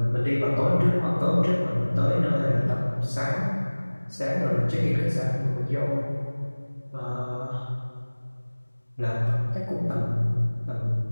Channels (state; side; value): inverted; both; correlation -1.00